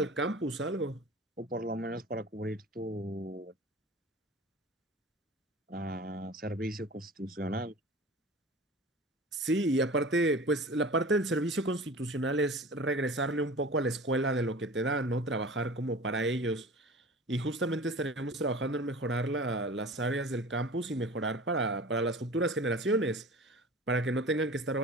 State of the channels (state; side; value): normal; both; correlation 0.39